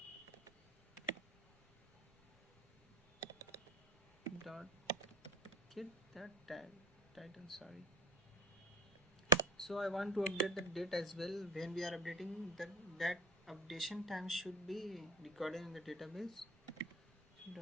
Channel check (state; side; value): normal; both; correlation 0.37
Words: dot get that title, sorry. So I want to update the date as well. When we are updating that updation time should be recorded in the database.